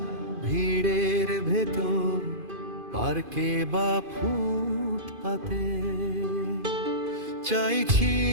ভিড়ের ভেতর, পার্কে বা ফুটপাতে। চাইছি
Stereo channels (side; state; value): left; late; 2.5 ms